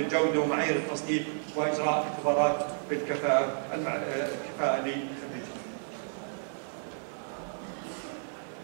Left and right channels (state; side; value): silent; left; 57 dB below the other